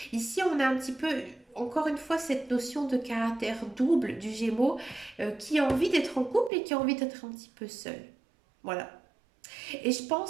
Ici, on a un petit peu, encore une fois, cette notion de caractère double du Gémeaux qui a envie d'être en couple et qui a envie d'être un petit peu seul. Voilà. Et je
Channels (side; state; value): left; drops out; at 6.5 s